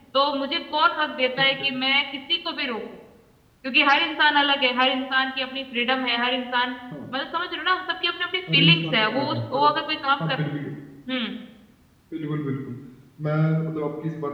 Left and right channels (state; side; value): identical; both; correlation 1.00